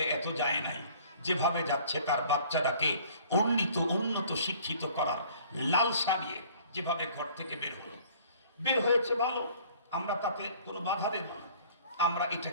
এত যায় নাই, যেভাবে যাচ্ছে তার বাচ্চাটাকে উন্নত শিক্ষিত করার লালসা নিয়ে যেভাবে ঘর থেকে বের হয়েছে ভালো, আমরা তাতে কোনো বাধা দেব না, আমরা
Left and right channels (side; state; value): both; inverted; correlation -0.53